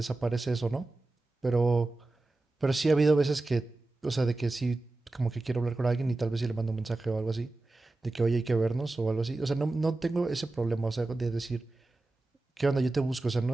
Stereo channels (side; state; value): left; quieter; 3.1 dB